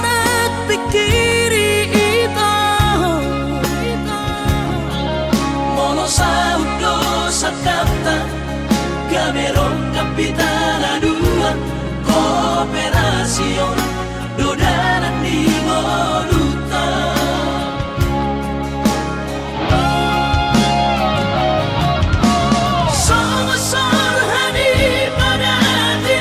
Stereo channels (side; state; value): both; identical; correlation 1.00